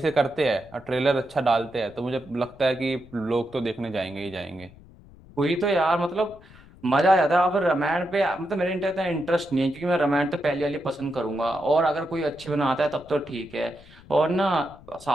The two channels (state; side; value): noise; left; rumble, 22 dB below the sound